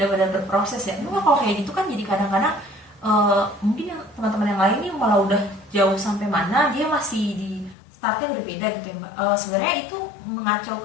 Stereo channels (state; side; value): drops out; right; at 7.8 s